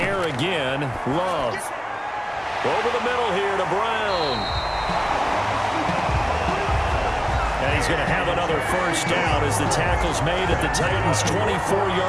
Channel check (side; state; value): both; identical; correlation 1.00